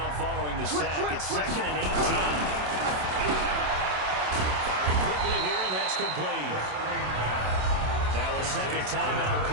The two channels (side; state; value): left; late; 27 ms